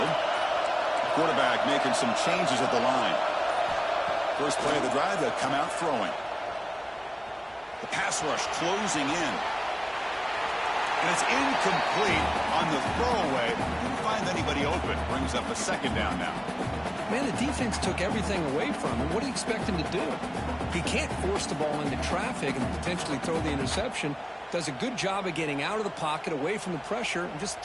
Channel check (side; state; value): both; identical; correlation 1.00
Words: Quarterback making some changes at the line. First play of the drive, they'll come out throwing. The pass rush closing in. And it's incomplete on the throwaway. Didn't find anybody open. Brings up a 2nd down now. Man, the defense took everything away from him. What do you expect him to do? He can't force the ball into traffic and potentially throw the interception. Does a good job of getting out of the pocket, away from the pressure, and just